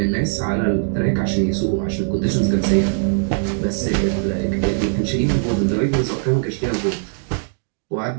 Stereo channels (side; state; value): left; silent; digital silence